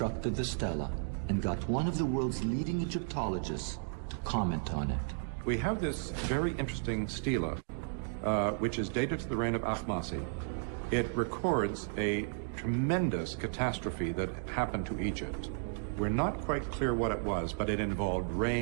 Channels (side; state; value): left; silent; digital silence